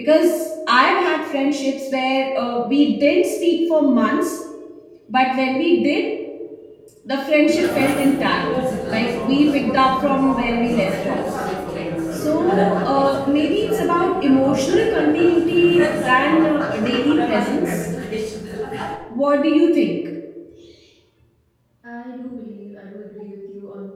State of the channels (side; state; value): both; identical; correlation 1.00